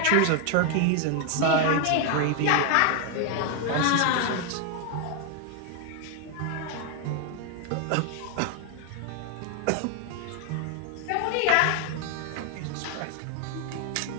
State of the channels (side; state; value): both; different; correlation 0.01